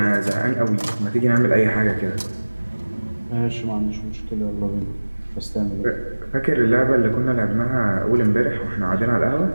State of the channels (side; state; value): both; inverted; correlation -1.00